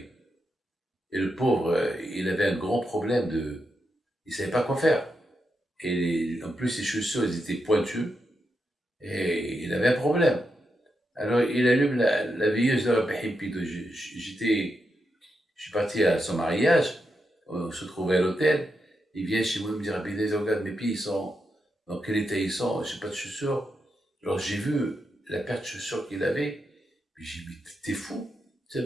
Et le pauvre, il avait un grand problème il ne savait pas quoi faire. Et en plus, ses chaussures, elles étaient pointues. Et il avait un problème. Alors, il allume la veilleuse de la Pépito. Je suis parti à son mariage. On se trouvait à l'hôtel. Il vient chez moi me dire, regarde, mes pieds, ils sont, dans quel état ils sont, je n'ai pas de chaussures. Alors j'ai vu la paire de chaussures qu'il avait, puis j'ai dit, t'es fou, tu as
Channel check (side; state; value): both; normal; correlation 0.85